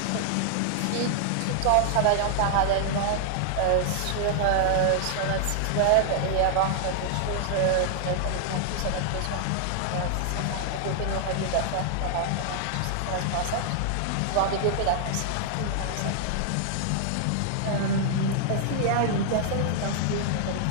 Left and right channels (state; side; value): different; both; correlation -0.01